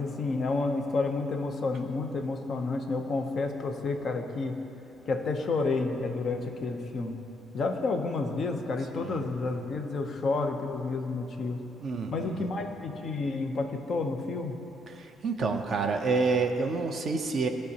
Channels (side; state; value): both; normal; correlation 0.73